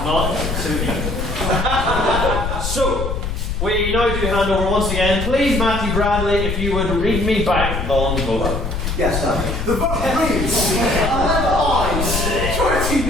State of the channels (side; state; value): left; noise; rumble, 3 dB below the sound